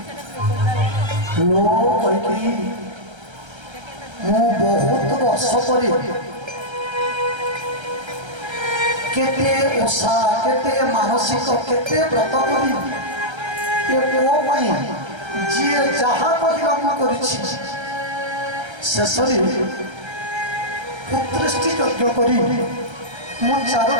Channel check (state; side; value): late; left; 1.3 ms